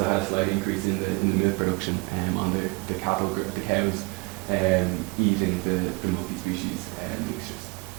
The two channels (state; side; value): quieter; left; 29.2 dB